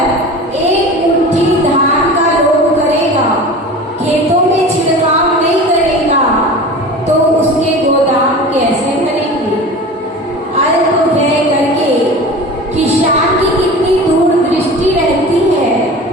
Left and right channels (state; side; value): normal; both; correlation 0.35